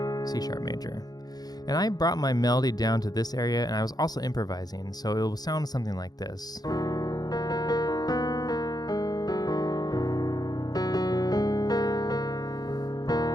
C sharp major. And I brought my melody down to this area, and I was also improvising, so it will sound something like this.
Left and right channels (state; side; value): late; right; 0.19 ms